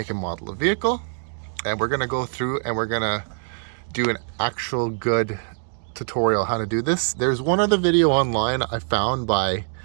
and model of vehicle. And we're going to go through and we're going to do an actual good tutorial how to do this. There's one other video online I found by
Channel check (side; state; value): left; silent; 63 dB below the other